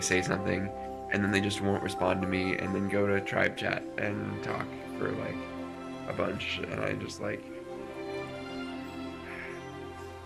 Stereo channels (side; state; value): both; identical; correlation 1.00